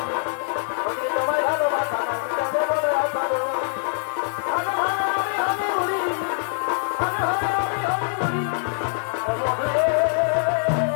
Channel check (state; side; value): silent; right; digital silence